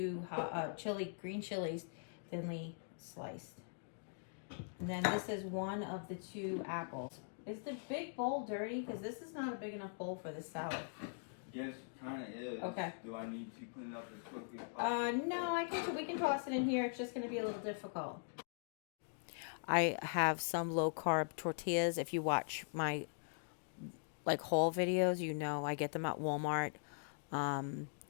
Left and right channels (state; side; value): silent; right; digital silence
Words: green chilies, thinly sliced. And then this is 1 of the 2 apples. Is the big bowl dirty? Because this is not a big enough bowl for this salad. Yes, kind of is. Okay. Do I need to clean up as quickly as possible? No, we can toss it in here. It's just going to be a little difficult. I have some low carb tortillas. If you watch my haul videos, you know I get them at Walmart.